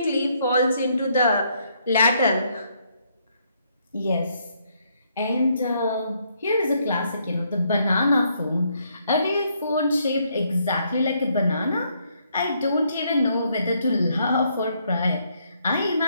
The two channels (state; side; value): inverted; both; correlation -0.72